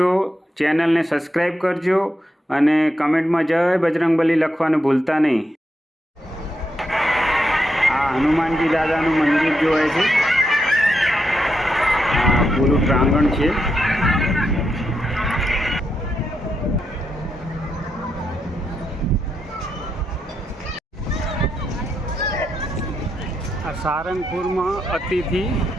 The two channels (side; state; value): both; normal; correlation 0.83